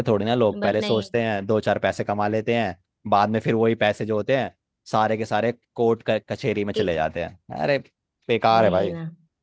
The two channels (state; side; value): identical; both; correlation 1.00